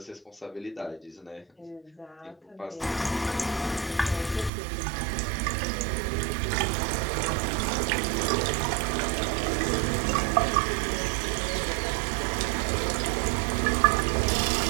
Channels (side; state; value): left; drops out; at 4.5 s